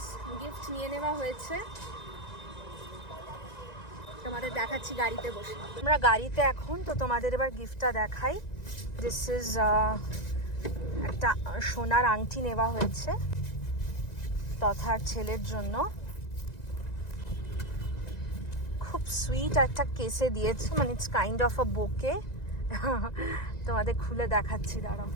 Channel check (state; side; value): late; right; 1.9 ms